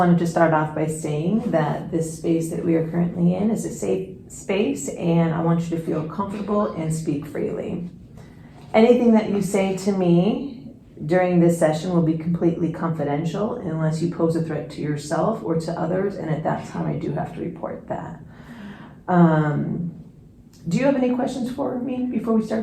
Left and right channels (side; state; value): both; identical; correlation 1.00